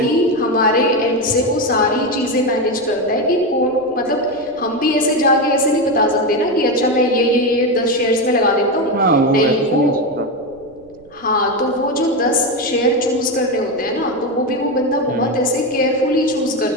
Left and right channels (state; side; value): noise; right; rumble, 27 dB below the sound